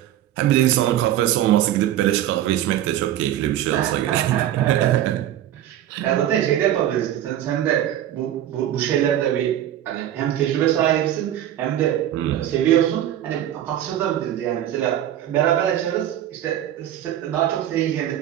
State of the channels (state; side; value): quieter; left; 11.9 dB